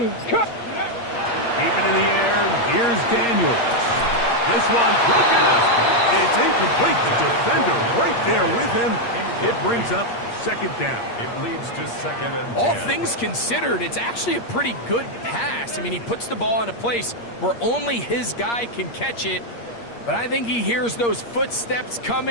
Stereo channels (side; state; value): right; late; 8.5 ms